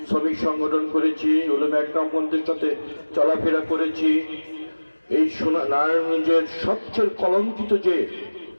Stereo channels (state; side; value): inverted; both; correlation -1.00